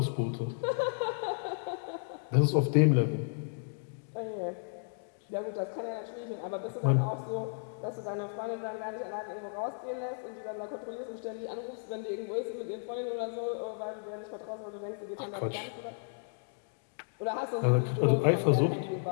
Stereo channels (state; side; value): silent; right; digital silence